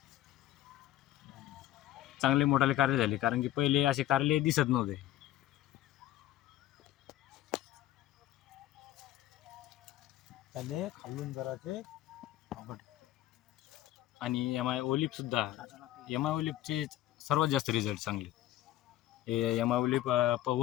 चांगले मोठाले कारले झाले, कारण की पहिले असे कारले दिसत नव्हते. त्याले खालून जराचे आणि एम-आय ओलिप सुद्धा, एम-आय ओलिपचे सर्वात जास्त रिझल्ट चांगले. हे एम-आय ओलिप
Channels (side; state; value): right; quieter; 14.3 dB